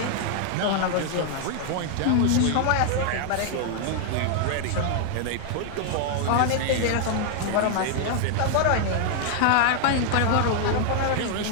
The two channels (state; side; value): different; both; correlation 0.00